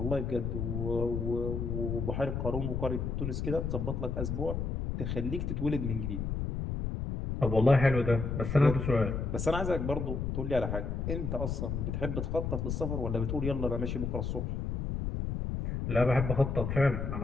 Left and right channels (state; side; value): noise; left; rumble, 2 dB below the sound